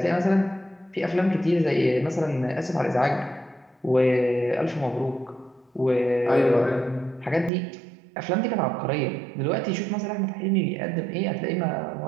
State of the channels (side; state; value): left; drops out; at 7.5 s